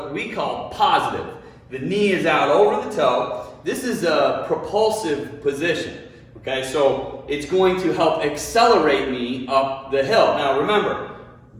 we call positive. The knee is out over the toe. This is a propulsive position. Okay, so it's going to help accelerate me up the hill. Now remember,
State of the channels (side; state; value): both; identical; correlation 1.00